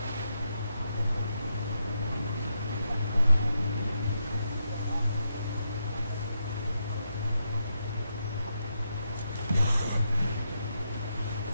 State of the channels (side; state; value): both; inverted; correlation -0.83